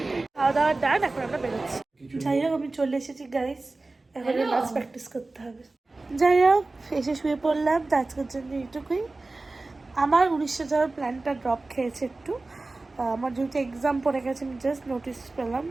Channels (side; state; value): left; quieter; 3.3 dB